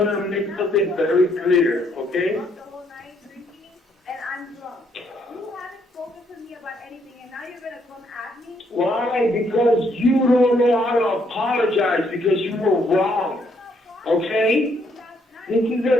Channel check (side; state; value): both; normal; correlation 0.71